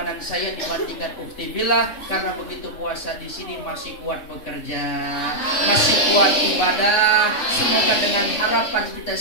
saya dibandingkan ukhti billah, karena begitu puasa di sini masih kuat bekerja, masih kuat ibadah. Semoga dengan harapan kita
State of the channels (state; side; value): late; right; 3.5 ms